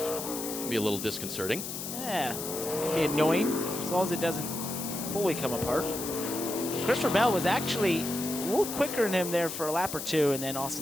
be a little disconcerting. Yeah, can be annoying as long as it doesn't fully come apart. Christopher Bell was actually a little quicker than him there for a lap or 2, and then Austin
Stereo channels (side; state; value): left; noise; hiss, 6 dB below the sound